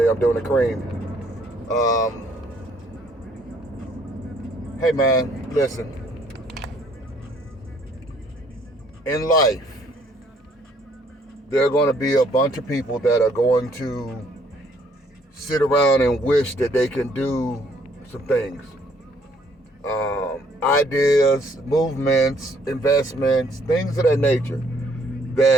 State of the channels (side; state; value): both; normal; correlation 0.64